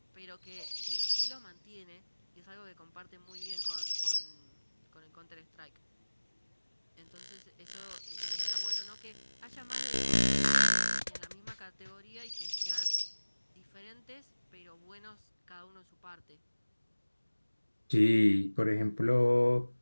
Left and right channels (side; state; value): both; inverted; correlation -1.00